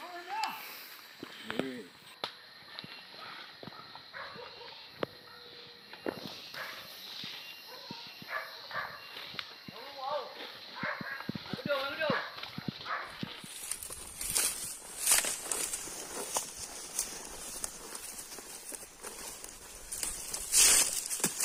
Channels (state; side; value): identical; both; correlation 1.00